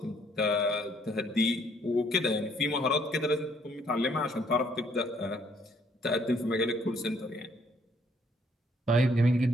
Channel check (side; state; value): both; normal; correlation 0.66